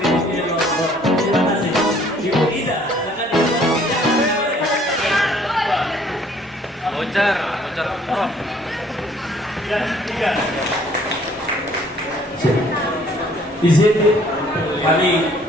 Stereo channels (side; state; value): both; normal; correlation 0.59